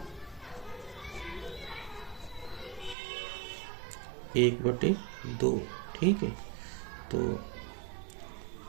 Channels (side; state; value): left; drops out; at 3.0 s